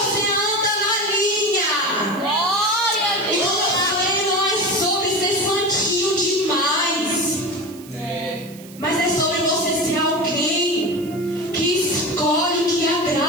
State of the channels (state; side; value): noise; right; hiss, 20 dB below the sound